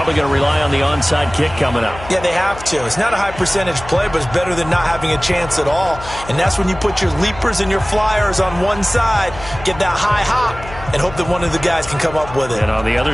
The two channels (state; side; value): noise; left; hum, 14 dB below the sound